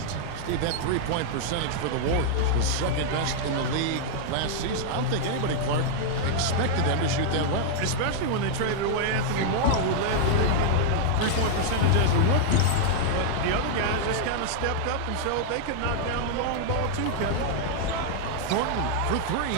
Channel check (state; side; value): different; both; correlation -0.01